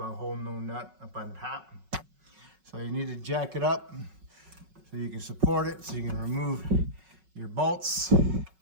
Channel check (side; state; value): left; late; 5.4 ms